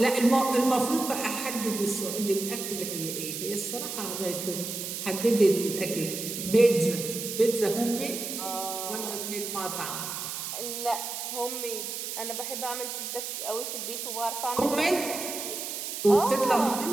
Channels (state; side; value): noise; right; hiss, 5 dB below the sound